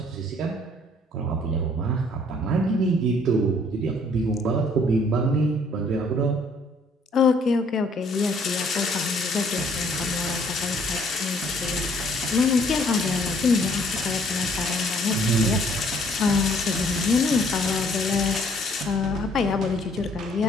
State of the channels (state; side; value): normal; both; correlation 0.62